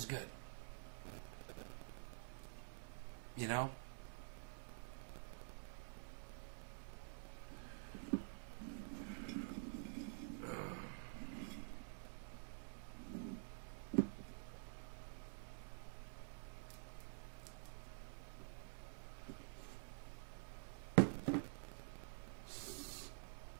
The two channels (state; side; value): silent; left; digital silence